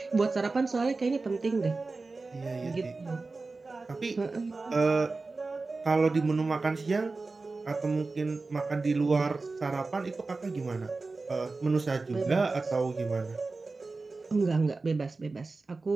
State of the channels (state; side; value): quieter; left; 3.7 dB